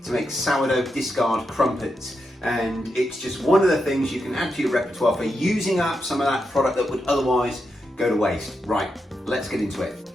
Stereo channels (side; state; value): both; normal; correlation 0.85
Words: to make sourdough discard crumpets. And it's just one of the things you can add to your repertoire for using up some of that product that would otherwise go to waste. Right, let's get into it.